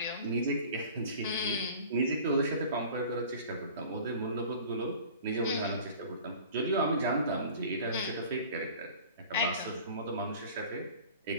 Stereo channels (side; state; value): both; inverted; correlation -0.43